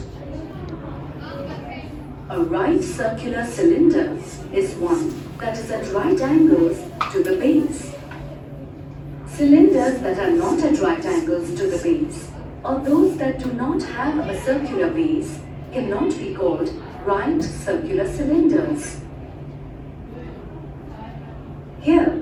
A right circular cylinder is one that is at right angles to the base. Cylinders that are not at right angles to the base or those that do not have a circular base cannot be called right circular cylinders. Here,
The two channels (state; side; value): identical; both; correlation 1.00